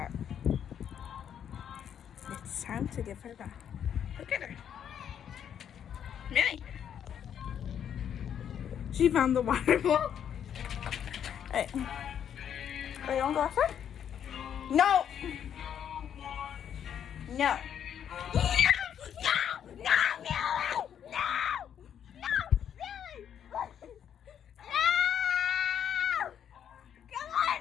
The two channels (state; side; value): quieter; right; 9.0 dB